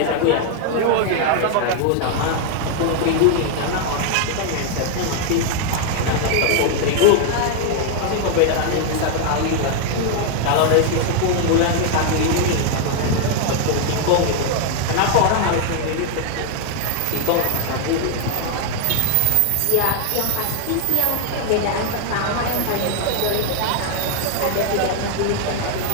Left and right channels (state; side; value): different; both; correlation 0.00